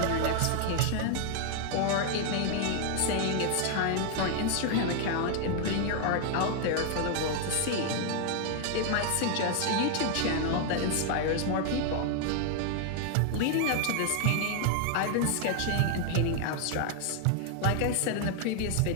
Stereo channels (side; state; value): both; different; correlation 0.00